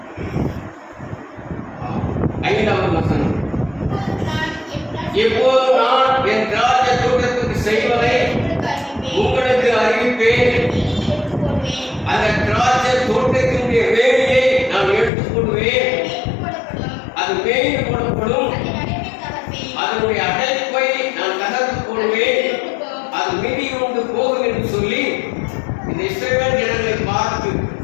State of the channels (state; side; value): drops out; right; at 15.1 s